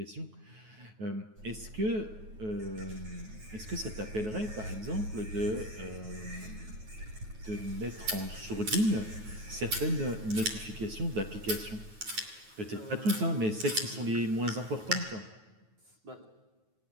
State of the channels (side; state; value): left; late; 9.3 ms